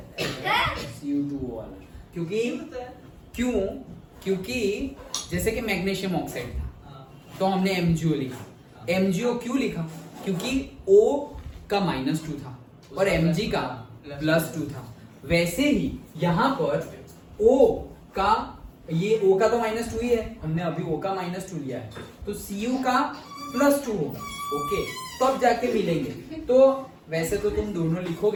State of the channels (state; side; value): identical; both; correlation 1.00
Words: Cu2O वाला. क्योंकि जैसे कि मैग्नीशियम ऑक्साइड था तो हमने MgO लिखा. MgO क्यों लिखा? क्योंकि O का -2 था और Mg का +2 था. वैसे ही यहाँ पर O का, ये O का तो -2 ही है, हमने अभी O का -2 लिया है, तो Cu का +2 होगा. ओके. तब जाके मिलेंगे. तो वैसे तो तुम दोनों